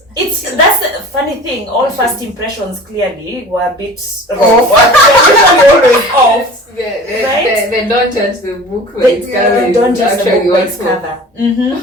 That's the funny thing. All first impressions clearly were a bit wrong. Always off. They don't judge the book when it's They don't judge the book by its cover.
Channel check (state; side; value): normal; both; correlation 0.41